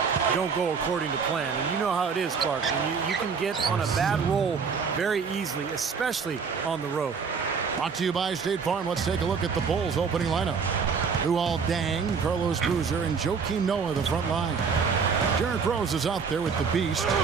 don't go according to plan. And you know how it is, Clark. You can get on a bad roll very easily, especially on the road. Brought to you by State Farm. Let's take a look at the Bulls' opening lineup. Luol Deng, Carlos Boozer, and Joakim Noah, the front line. Derrick Rose is out there with the Beast.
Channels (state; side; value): quieter; left; 5.8 dB